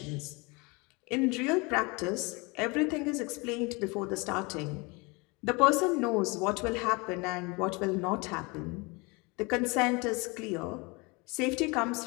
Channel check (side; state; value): right; quieter; 27.5 dB